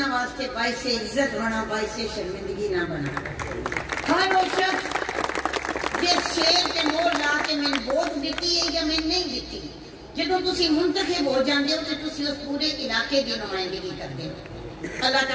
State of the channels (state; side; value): identical; both; correlation 1.00